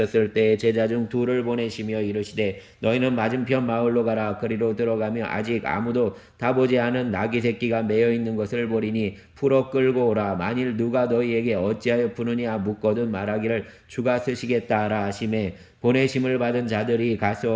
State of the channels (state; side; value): identical; both; correlation 1.00